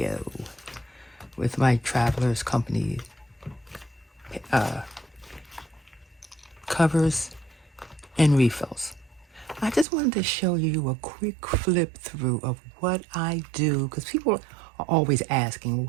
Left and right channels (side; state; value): left; drops out; at 9.9 s